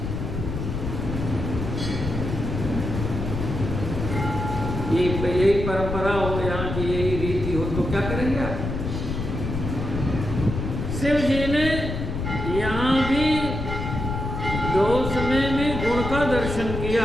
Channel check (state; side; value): noise; left; rumble, 4 dB below the sound